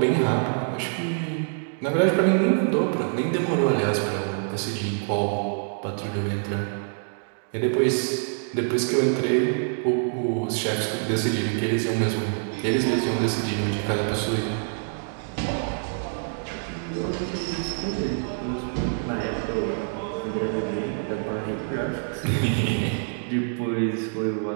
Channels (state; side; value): silent; left; digital silence